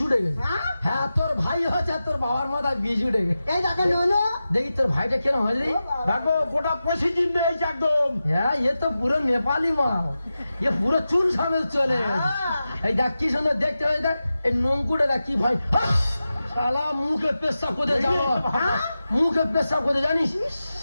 উঠে গেছে। হ্যাঁ? হ্যাঁ, তোর ভাই হচ্ছে আর তোর বাবার মাথায় বিষ উঠে গেছে। এই দেখো ননো। দেখি তোর ভাইটা কেন হয়নি। দেখো গোটা পঁচিশ নেই একদম। হ্যাঁ, এ তো পুরো নেপালি মাল, এ পুরো চুল সামেল চলে গেছে। এই দেখ কি সুন্দর দেখতে হয়, দেখ এই নঙ্কুটা দেখ কি ভাই। শালা মুখে পেশাব করতে যাবো, মুখে পেশাব করতে জানিস।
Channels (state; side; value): inverted; both; correlation -0.93